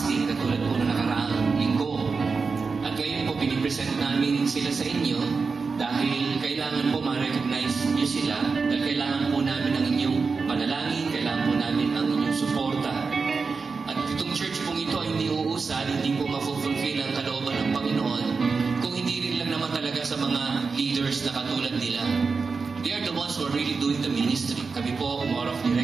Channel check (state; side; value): quieter; left; 4.7 dB